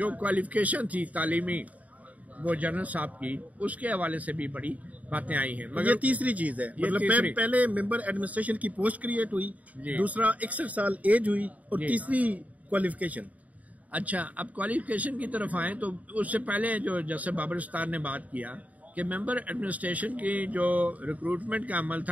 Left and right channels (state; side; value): late; left; 0.072 ms